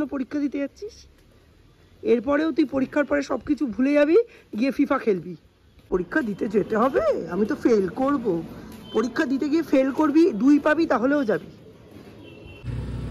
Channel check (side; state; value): both; identical; correlation 1.00